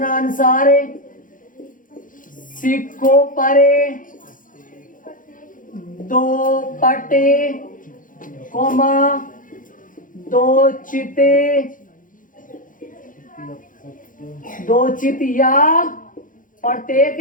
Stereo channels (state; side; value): late; right; 0.39 ms